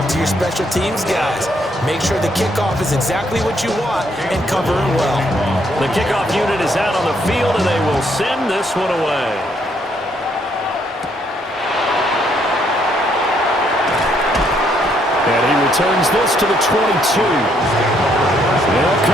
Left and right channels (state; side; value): normal; both; correlation 0.71